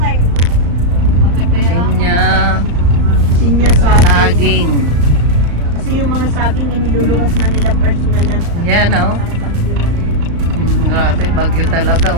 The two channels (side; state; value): left; late; 35 ms